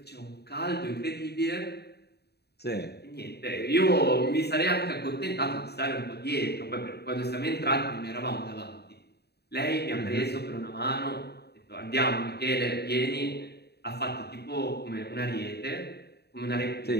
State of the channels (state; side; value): late; right; 0.48 ms